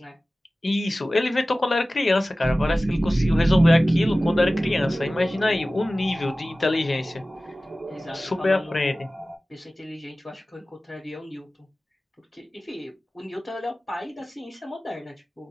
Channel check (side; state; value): both; normal; correlation 0.97